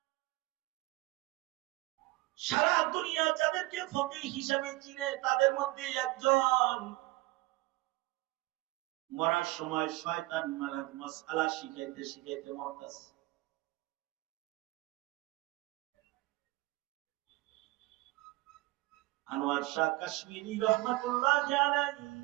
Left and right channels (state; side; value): quieter; left; 20.4 dB